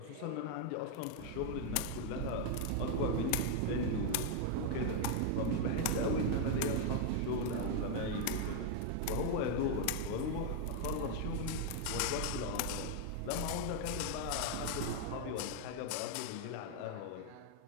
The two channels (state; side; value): different; both; correlation 0.00